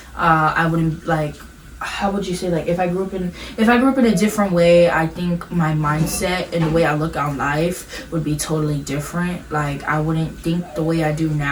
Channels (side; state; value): both; identical; correlation 1.00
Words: I wouldn't like. How would you say, like, if I grew up in a different way, I think my mindset and the way I look on life would be totally different. Like, I wouldn't think the way I do